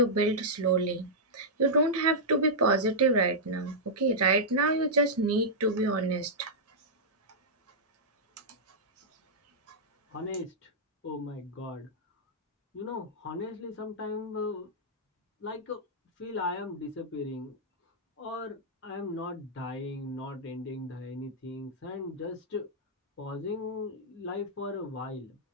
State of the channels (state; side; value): normal; both; correlation -0.09